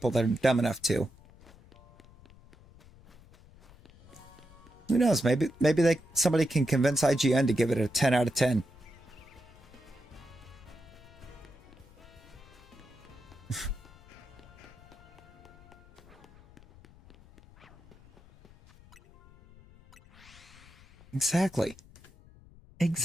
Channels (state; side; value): noise; left; rumble, 23 dB below the sound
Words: that are dumb enough to. Who knows? Maybe somebody can convince IGN to give it a 10 out of 10. Exactly.